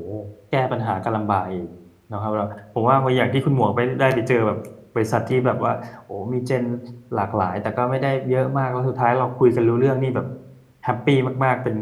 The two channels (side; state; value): both; identical; correlation 1.00